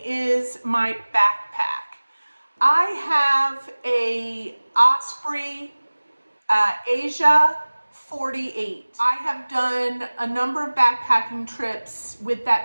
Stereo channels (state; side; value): inverted; both; correlation -1.00